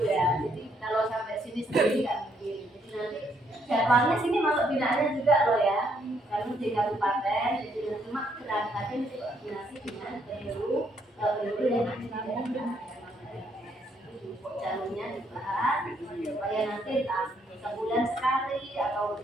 ya. Jadi kalau sampai sini sendiri nggak mungkin. Jadi nanti jadwalnya sini masuk binaannya juga loh ya. Karena di kabupaten, jadi cuma berangkatnya nanti koordinasi dengan penyuluh yang nanti jalurnya dibahas supaya nanti entah sebulan sekali atau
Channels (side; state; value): both; normal; correlation 0.72